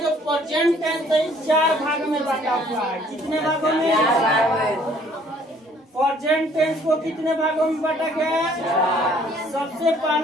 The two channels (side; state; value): both; normal; correlation 0.59